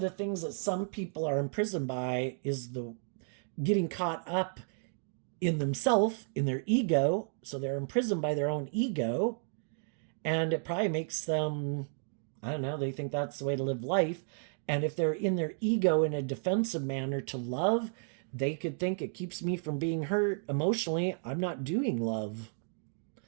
the things that some people are imprisoned by is the getting caught up in themself, in their ego. So they're imprisoned by their own ego. And it probably makes them, I don't know, they think that's the way to live life. And if they're in their ego in a defensive manner to love, they could think it keeps me from being hurt emotionally. I'm not doing love.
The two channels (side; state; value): left; silent; digital silence